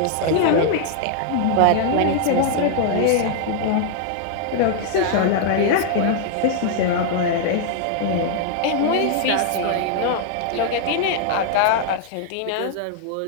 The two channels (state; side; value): different; both; correlation -0.01